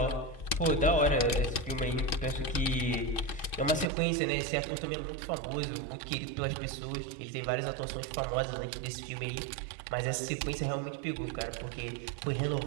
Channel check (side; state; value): left; drops out; at 3.9 s